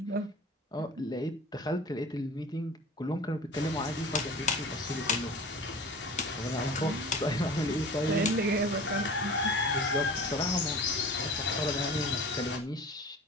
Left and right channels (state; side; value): normal; both; correlation 0.39